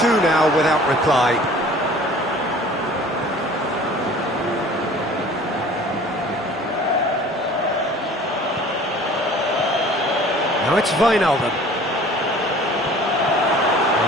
now without reply. Now it's Wijnaldum.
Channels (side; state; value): both; normal; correlation 0.47